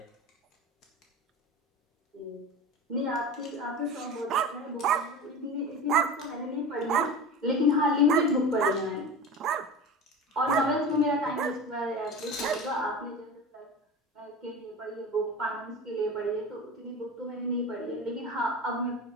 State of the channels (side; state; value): both; normal; correlation 0.31